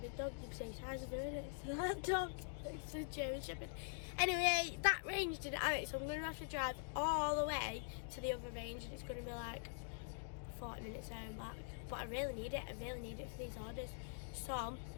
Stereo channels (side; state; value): right; silent; digital silence